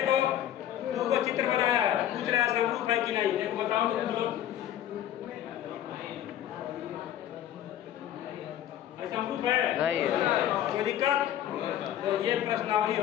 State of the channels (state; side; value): quieter; right; 11.4 dB